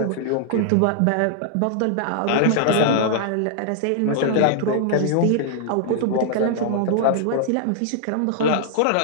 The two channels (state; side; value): different; both; correlation -0.01